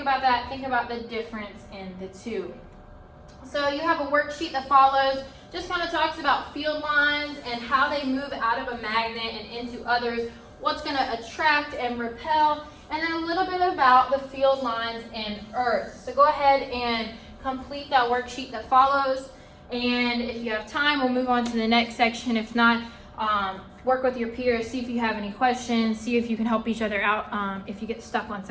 about that, think about the difference in the two. So you have a worksheet that follows, just kind of talks about field lines and how they move out of a magnet and into others, what's going to attract and repel, and then a little bit about the field lines in Earth. So go ahead and complete that worksheet that follows. And if you have time, we'll move on to the next section. If not, work with your peers, see if you have any questions, see if you can help each other out if you get stuck on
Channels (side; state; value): both; identical; correlation 1.00